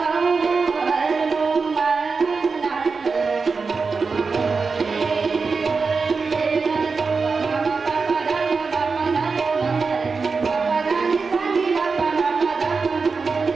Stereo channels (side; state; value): left; quieter; 4.7 dB